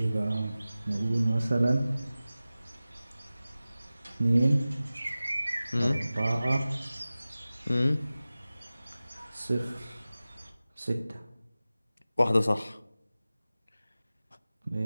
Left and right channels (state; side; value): inverted; both; correlation -0.96